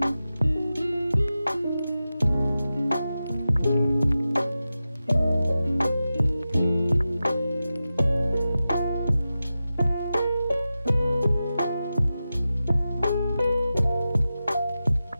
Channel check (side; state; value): both; inverted; correlation -0.93